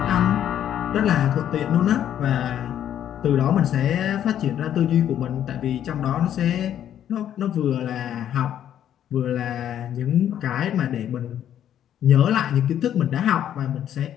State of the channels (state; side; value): quieter; right; 10.4 dB